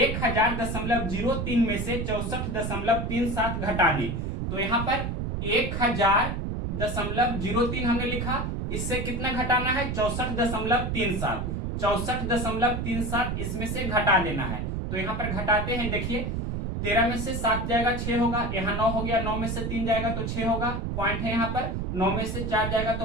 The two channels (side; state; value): right; noise; rumble, 2 dB below the sound